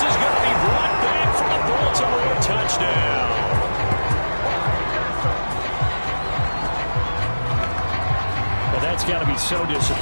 is going to be brought back for a Baltimore touchdown. Well, that's got to be so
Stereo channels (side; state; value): both; inverted; correlation -1.00